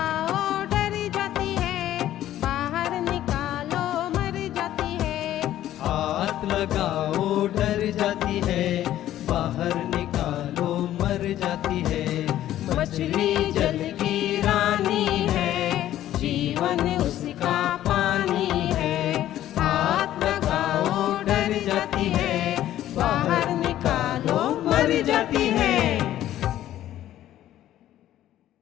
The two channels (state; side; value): quieter; right; 12.8 dB